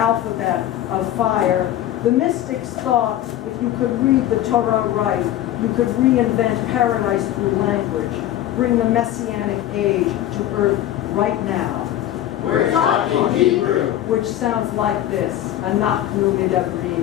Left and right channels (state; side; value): quieter; right; 12.7 dB